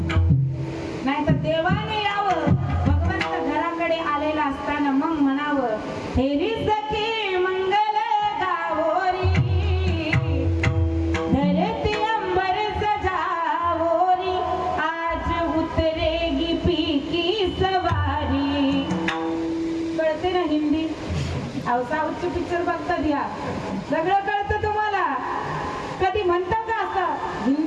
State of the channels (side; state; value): both; identical; correlation 1.00